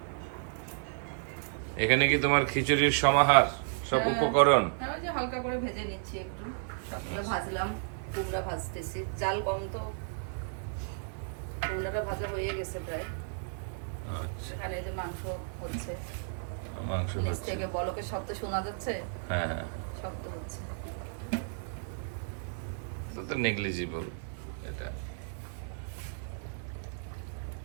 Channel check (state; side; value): silent; left; 56 dB below the other